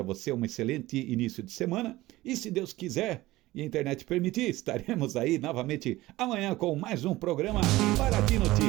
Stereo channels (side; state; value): left; quieter; 17.9 dB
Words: você um excelente início de semana, e se Deus quiser e a internet permitir, estaremos aí novamente amanhã com mais um programa Paraty